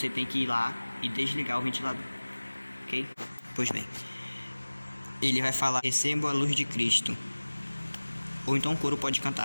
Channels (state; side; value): inverted; both; correlation -1.00